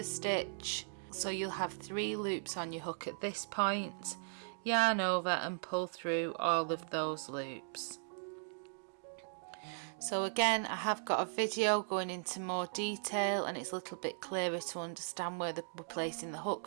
stitch. So you'll have 3 loops on your hook at this point. Yarn over and pull through all of those loops. So again, I have got a video going into more detail and it's a little bit clearer to understand where we're placing the hook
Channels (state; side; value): silent; left; digital silence